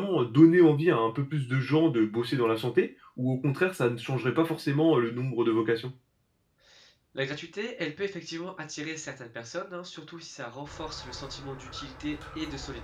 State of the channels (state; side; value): identical; both; correlation 1.00